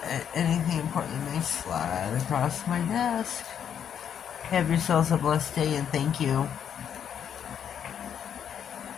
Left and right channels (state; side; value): quieter; right; 8.6 dB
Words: anything important that may slide across my desk. Have yourselves a blessed day and thank you.